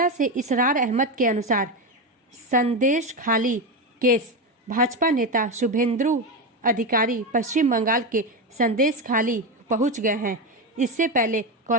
से इसरार अहमद के अनुसार संदेश खाली केस भाजपा नेता शुभेंदु अधिकारी पश्चिम बंगाल के संदेश खाली पहुंच गए हैं। इससे पहले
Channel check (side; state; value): both; normal; correlation 0.14